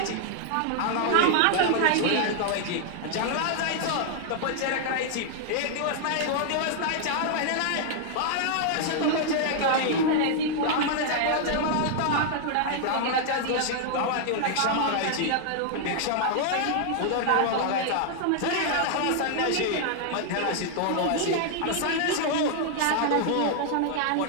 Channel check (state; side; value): different; both; correlation 0.00